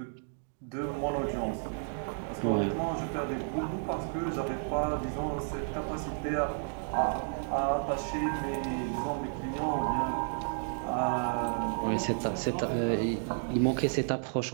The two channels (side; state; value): left; silent; 56 dB below the other